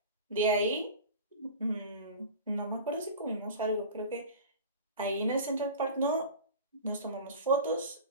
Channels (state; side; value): inverted; both; correlation -0.35